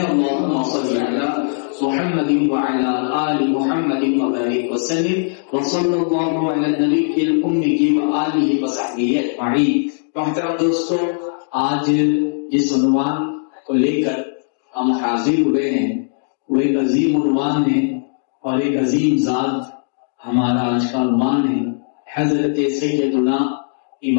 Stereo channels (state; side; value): silent; right; digital silence